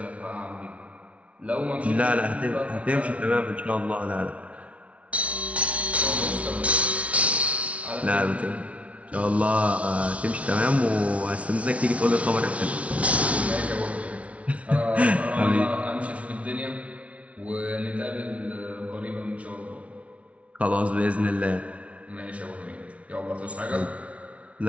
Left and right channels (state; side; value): late; left; 0.064 ms